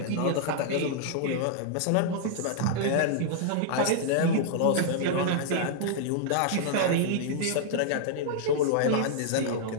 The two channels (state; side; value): different; both; correlation -0.01